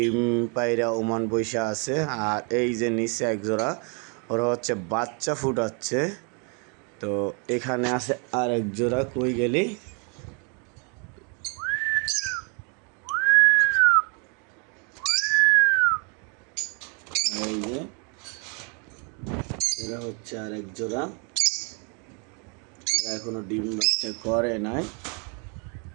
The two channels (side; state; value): left; quieter; 35.8 dB